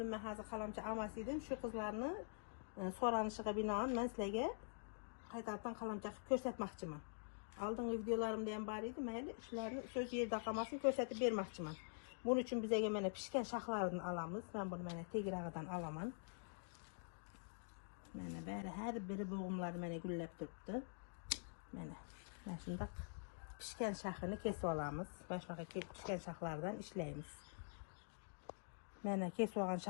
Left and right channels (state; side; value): silent; right; digital silence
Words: mən hazır kalamça amasıydım. Şu kızlarını soranışığa binaen mən sizlərə kaytalattan kalamça körsətməkçimən. Aldığım videolarımda yan var idi. Mən işlərini söz yerdə qalmasını körsətib verməkçimən. Bunun üçün bizə mənə pişkən şaxlarını alamız. Mən bunu mənə tegirağıdan alamam. Mənə bəri hər biri boğumları mənə gülləb durubdu. Mən şimdi pişkən şaxını kesib alamız. Başmağa pişkən şaxlardan işləyimiz. Mənə kesib alan